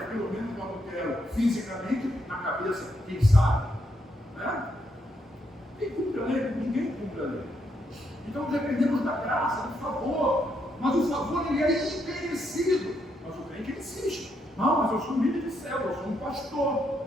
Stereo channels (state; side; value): normal; both; correlation 0.78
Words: pelo menos não adultero fisicamente, na cabeça, quem sabe? Né? Quem cumpre a lei? Ninguém cumpre a lei. Então dependemos da graça, do favor. Mas o favor ele é imerecido. Mas o crente insiste. Não, mas eu sou um líder de célula, eu sou um pastor,